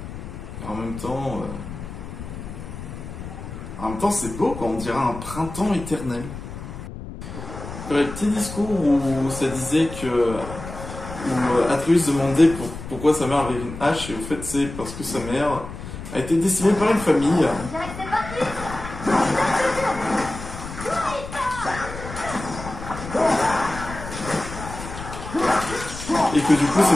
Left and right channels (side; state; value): left; noise; rumble, 10 dB below the sound